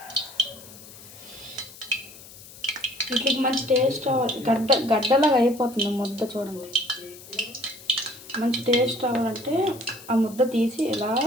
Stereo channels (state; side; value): noise; left; hiss, 18 dB below the sound